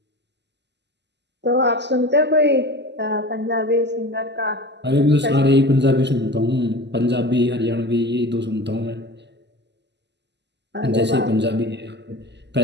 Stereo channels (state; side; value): late; left; 0.50 ms